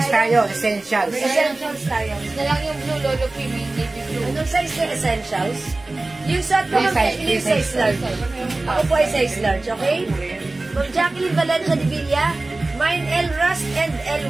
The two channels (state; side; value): quieter; left; 3.0 dB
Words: tayo, essentials. Essentials tayo. Na lang yung blue lolo premium, navy blue. Anong size na essentials? Yung suot ko, Free Ma'am size, Jacqueline, free size. size large. Ako po ay size large, okay? Ma'am Jacqueline Valencia de Villa, mine L rust and L